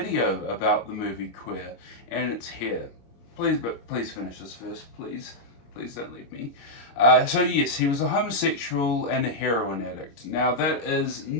about the movie Queer, and it's here. Please finish this first, please. Please don't leave me. So yes, he was a homosexual and a heroin addict. Now that is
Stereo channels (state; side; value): late; right; 26 ms